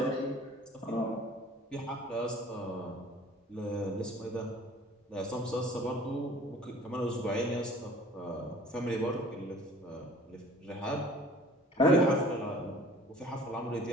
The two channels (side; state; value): both; normal; correlation 0.49